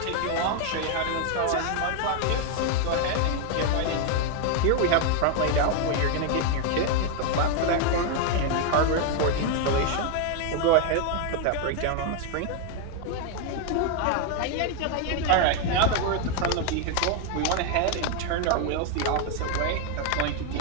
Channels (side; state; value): both; different; correlation 0.01